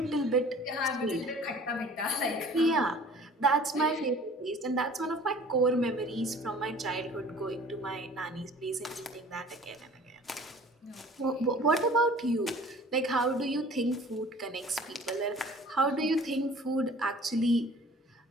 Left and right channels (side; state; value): both; normal; correlation 0.48